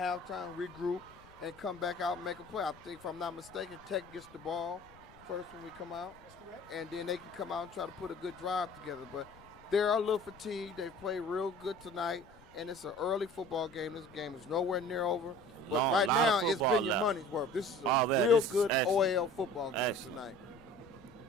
regroup, and come back out and make a play. I think, if I'm not mistaken, Tech gets the ball first when we come out. That's correct. And then they can come out and try to put a good drive together. But they're a little fatigued. They've played real good tonight, and it's an early football game. This game is nowhere near over. But right now, it's been your money's worth. This is a real good OAL football game tonight.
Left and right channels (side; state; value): left; noise; rumble, 24 dB below the sound